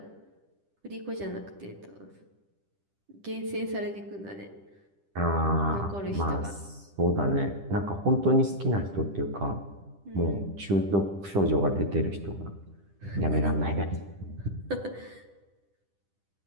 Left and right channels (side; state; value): left; late; 10 ms